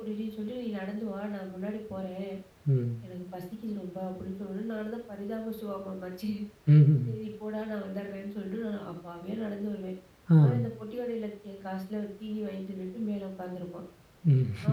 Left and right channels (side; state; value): both; identical; correlation 1.00